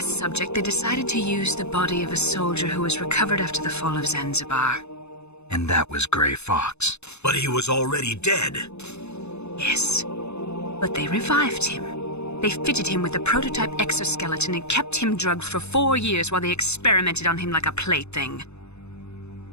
subject, they decided to use the body of a soldier who was recovered after the fall of Zanzibar. And that was Gray Fox. But he was already dead. Yes. But they revived him. They fitted him with a prototype exoskeleton and kept him drugged for 4 years while they experimented on him like a plaything.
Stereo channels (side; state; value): right; late; 0.81 ms